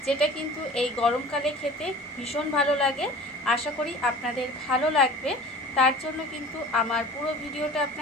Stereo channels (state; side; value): normal; both; correlation 0.42